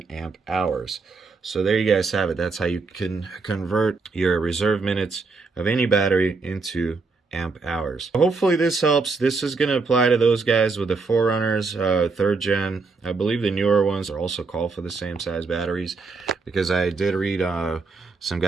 amp hours. So there you guys have it. That's how you can convert your reserve minutes of any battery into amp hours. Hopefully this helps. This is going to apply to those guys with the 4Runners, 3rd gen. I believe the newer ones are also called for the same size batteries, because I did read some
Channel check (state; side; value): quieter; left; 4.2 dB